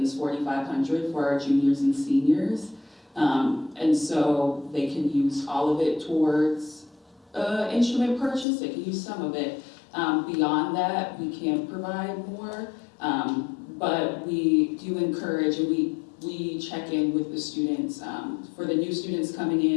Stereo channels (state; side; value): drops out; right; at 8.5 s